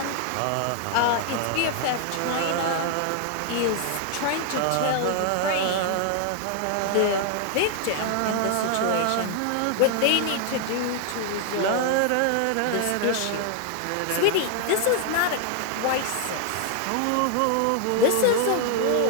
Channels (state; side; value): different; both; correlation 0.00